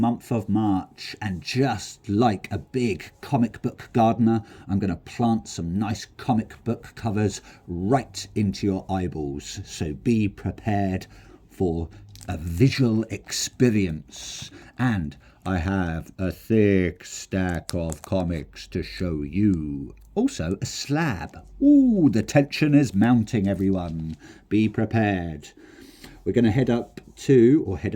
of March. And just like a big comic book gardener, I'm going to plant some nice comic book covers right into your eyeballs. So be prepared for a visual experience. And I have a thick stack of comics to show you. Also, a slab. Ooh, the tension is mounting, everyone. Be prepared. We're going to head up to, or head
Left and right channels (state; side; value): identical; both; correlation 1.00